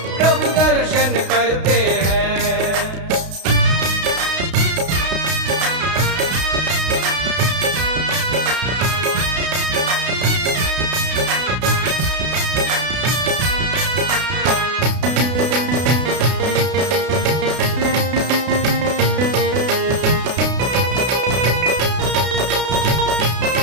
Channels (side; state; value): left; late; 32 ms